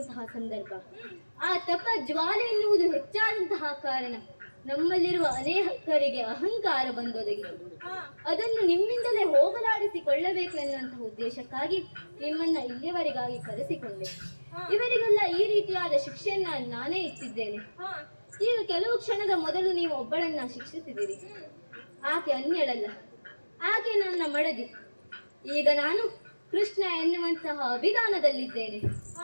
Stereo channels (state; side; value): inverted; both; correlation -1.00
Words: ಸಂದರ್ಭ. ಆ ತಪ ಜ್ವಾಲೆ ಎನ್ನುವುದು ಹೆಚ್ಚಾದಂತಹ ಕಾರಣ ನಮ್ಮಲ್ಲಿರುವ ಅನೇಕರಿಗೆ ಅಹಂಕಾರ ಬಂದೊದಗಿತು. ಅದನ್ನು ನಿಮ್ಮಿಂದಲೇ ಹೋಗಲಾಡಿಸಿಕೊಳ್ಳಬೇಕು ಎನ್ನುವಂತಹ ಉದ್ದೇಶಕ್ಕಾಗಿ ನಿಮ್ಮನ್ನ ಇಲ್ಲಿಯವರೆಗಾಗಿ ಕರೆಸಿಕೊಂಡೆ. ಇವರಿಗೆಲ್ಲ ಈ ರೀತಿಯಾದ ಶಿಕ್ಷೆಯನ್ನ ನಾನೇ ಇಟ್ಟಿದ್ದೇನೆ. ಈಗ ಕೆಲವು ಕ್ಷಣದ ಮೊದಲು ನೀವು ಒಬ್ಬಳನ್ನ ಶಿಕ್ಷಿಸಿದಿರಿ. ಆಕೆ ಅನ್ಯಳಲ್ಲ, ಆಕೆ ನನ್ನ ಮಡದಿ. ಈಗ ನಾನು ಕೃಷ್ಣ ಎನ್ನುವಂತಹ ಅಭಿಧಾನದಲ್ಲಿದ್ದೇನೆ.